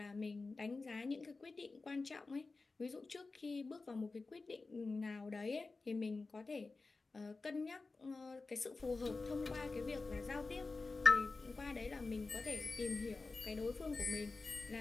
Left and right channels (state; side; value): quieter; right; 3.8 dB